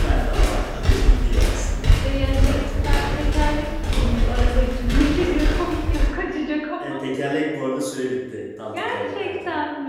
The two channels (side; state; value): both; identical; correlation 1.00